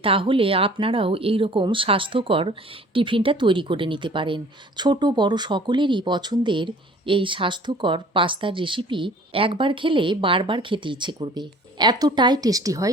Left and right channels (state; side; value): normal; both; correlation 0.50